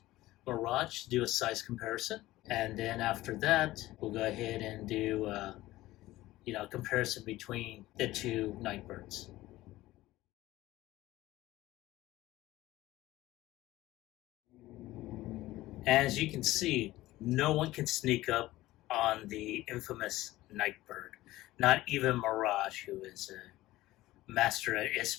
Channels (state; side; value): quieter; right; 16.9 dB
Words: Mirage to do a size comparison. And then after that, we'll go ahead and do a comparison between the 2 Nightbirds. As you can see, no one can sneak up on the infamous Nightbird. Not even Mirage, who is a master at